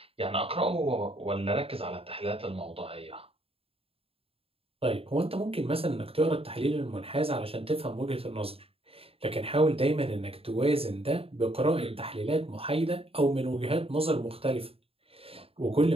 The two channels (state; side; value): late; left; 0.28 ms